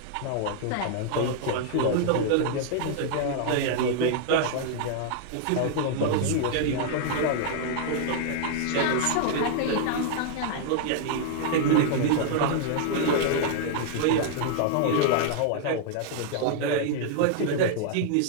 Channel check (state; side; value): different; both; correlation -0.01